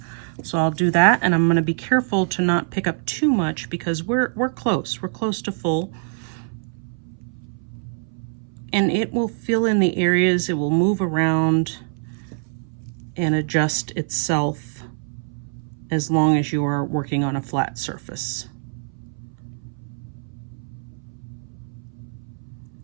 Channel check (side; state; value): left; silent; 60 dB below the other